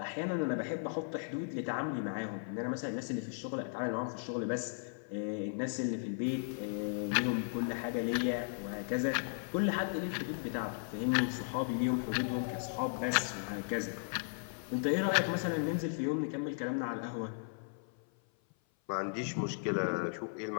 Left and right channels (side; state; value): right; silent; 54 dB below the other